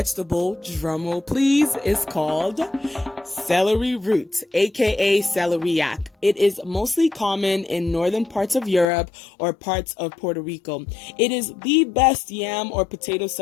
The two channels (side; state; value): right; drops out; at 8.8 s